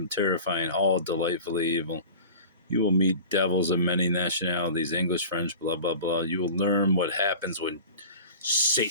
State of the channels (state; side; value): inverted; both; correlation -0.38